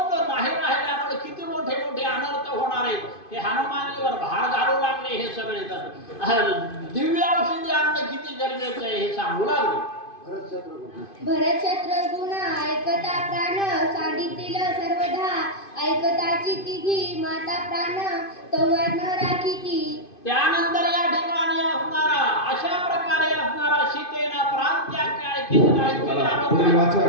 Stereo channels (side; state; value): right; late; 2.5 ms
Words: नाही राहिल्यामुळे किती मोठे मोठे अनर्थ होणार आहेत हे हनुमानीवर भार घालू लागले. हे सगळे जण दिव्य औषधी आणणं किती गरजेचं आहे हे सांगू लागले. भरत शत्रुघ्न ऐकता प्राण सांडितील सर्वधा ऐकताची तिघी माता प्राण तोवर न राखीती. त्यानंतर या ठिकाणी असणारा अशा प्रकारे असणारा सीतेनं प्राण त्याग काय केला. पुढील वाचक